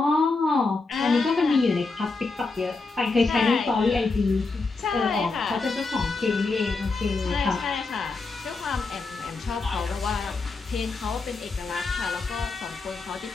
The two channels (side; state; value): right; quieter; 3.9 dB